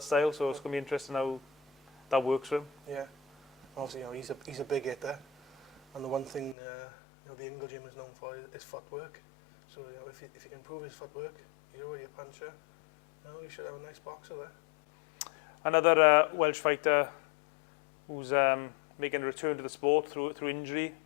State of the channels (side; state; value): right; drops out; at 6.6 s